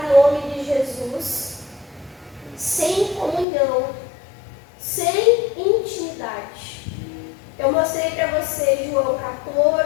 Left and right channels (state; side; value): drops out; right; at 3.5 s